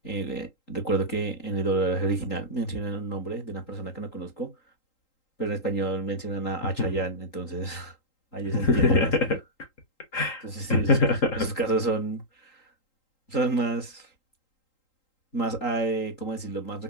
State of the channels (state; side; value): late; right; 3.8 ms